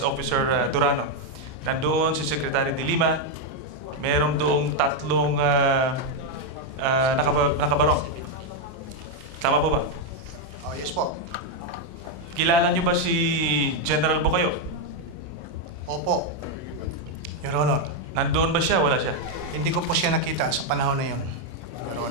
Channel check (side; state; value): left; late; 32 ms